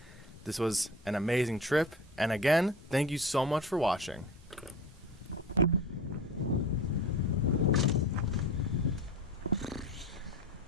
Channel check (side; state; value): both; normal; correlation 0.35